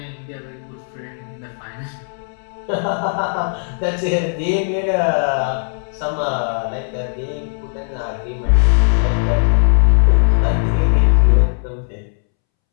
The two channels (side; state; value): right; silent; 67 dB below the other